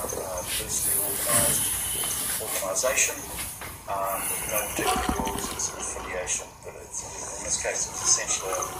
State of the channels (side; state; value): both; identical; correlation 1.00